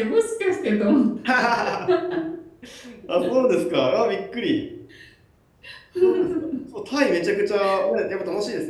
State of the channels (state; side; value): identical; both; correlation 1.00